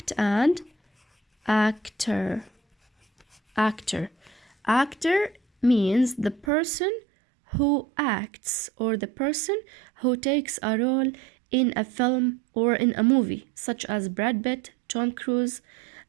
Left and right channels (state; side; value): drops out; left; at 6.5 s